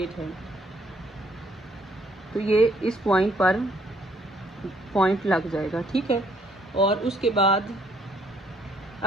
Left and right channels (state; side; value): normal; both; correlation 0.66